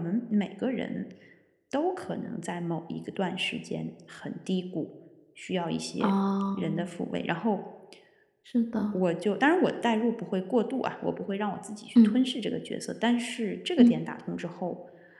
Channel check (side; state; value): both; identical; correlation 1.00